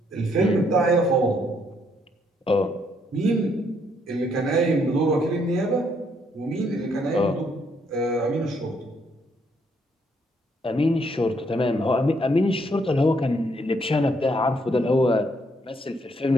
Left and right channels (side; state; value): both; normal; correlation 0.71